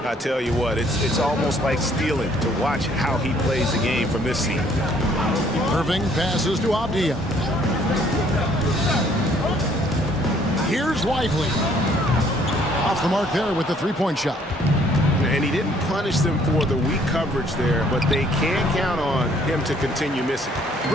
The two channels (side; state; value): both; normal; correlation 0.62